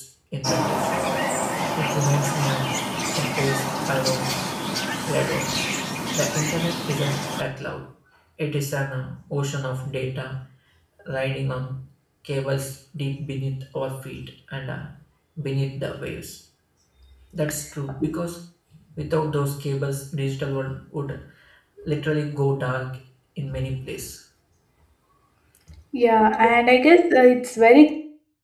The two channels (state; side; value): identical; both; correlation 1.00